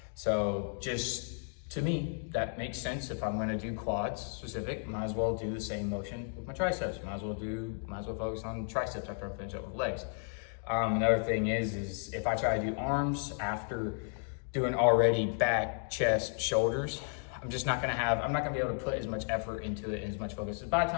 So just to me, that makes sense. If I'm gonna do quads specific, might as well do the same motion with my triceps. Might as well focus on triceps after I finish up with legs. Another thing is if I try to do arms after doing already back, chest, shoulders, I'm not gonna be able to put as much effort into it and as much focus. So by the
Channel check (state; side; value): silent; right; 55 dB below the other